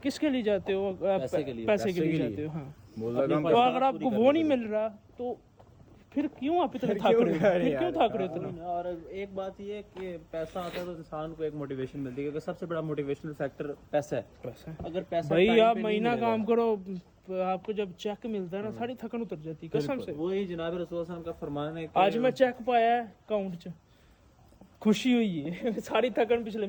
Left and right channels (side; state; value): both; identical; correlation 1.00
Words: किसके लिए जाते हो? पैसे के लिए जाते हो। हाँ, तो अगर आपको वो नहीं मिल रहा तो फिर क्यों आप इतने थक रहे हो, फिर क्यों थक रहे हो इतना? और एक बात ये है कि पैसा आता है तो इंसान को एक मोटिवेशन मिलती है, क्योंकि सबसे बड़ा मोटिवेशनल फैक्टर पैसा है। पैसा अगर पैसा भाई आप महीना काम करो, आपको जब चेक मिलता है ना, सारी थकन उतर जाती है कसम से। वही जनाब रसूल सल्लल्लाहु अलैहि वसल्लम का फरमान है। आज मैं चेक पाया है अकाउंट च, खुशी हुई है सारी थकन पिछले